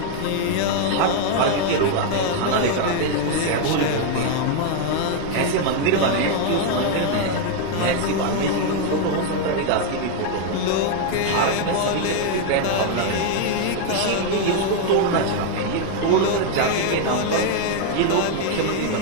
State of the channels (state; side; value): different; both; correlation 0.00